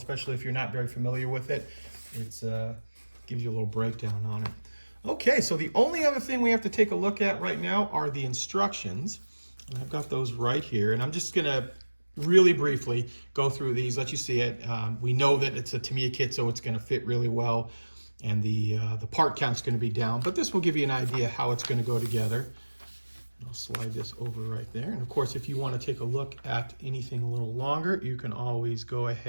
if you're not very familiar with it. It's gives you a little breakdown on it. Okay, so the only other thing we have to take a look at right now are the instructions. And I've got those right here, and I'm just gonna really briefly go through these, let you see it. We know that it's a Tamiya kit, so it's gonna fit really well, and the part count's gonna be down, but this will give you an idea how it's gonna go together. I'll slide this over right there. And of course, if you want to take a look at anything a little longer, you can always go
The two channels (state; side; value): inverted; both; correlation -1.00